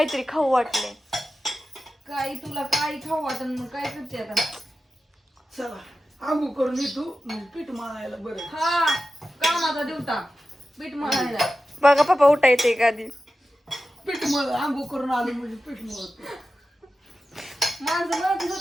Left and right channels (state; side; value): normal; both; correlation 0.93